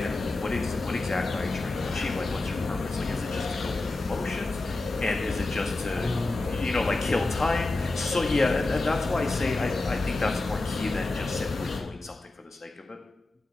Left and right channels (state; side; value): quieter; right; 3.0 dB